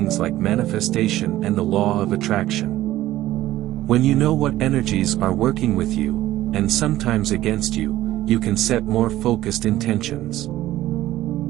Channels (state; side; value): quieter; left; 14.9 dB